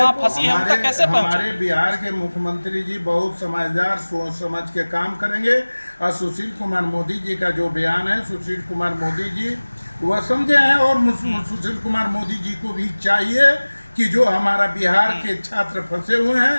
फंसी है उन तक कैसे पहुंचे? हमारे बिहार के मुख्यमंत्री जी बहुत समझदार, सोच समझ के काम करेंगे। और सुशील कुमार मोदी जी का जो बयान है, सुशील कुमार मोदी जी वह समझे हैं। और सुशील कुमार मोदी जी को भी चाहिए कि जो हमारा बिहार के छात्र फंसे हुए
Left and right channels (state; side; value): inverted; both; correlation -1.00